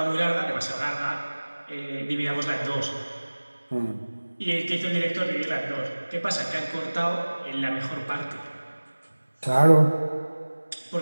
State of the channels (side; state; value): both; inverted; correlation -1.00